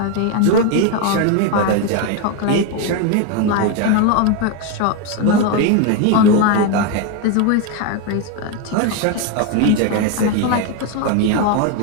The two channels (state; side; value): different; both; correlation 0.02